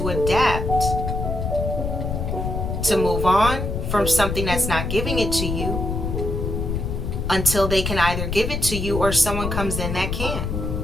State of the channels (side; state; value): left; noise; rumble, 3 dB below the sound